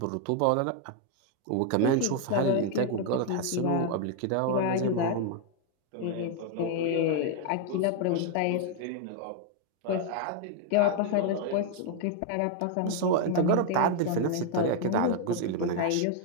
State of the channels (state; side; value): different; both; correlation 0.00